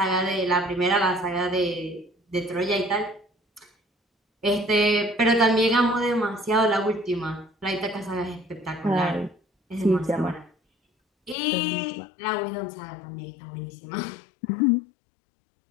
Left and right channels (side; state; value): right; drops out; at 11.4 s